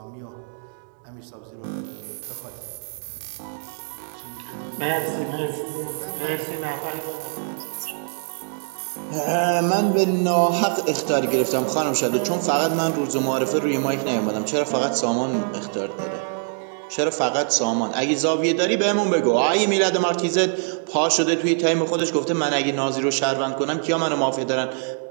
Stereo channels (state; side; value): silent; left; 63 dB below the other